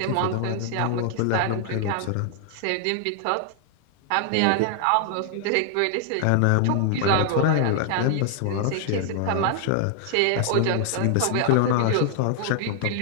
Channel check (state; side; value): different; both; correlation 0.00